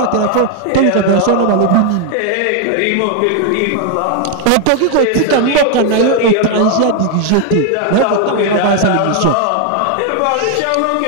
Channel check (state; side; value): different; both; correlation 0.00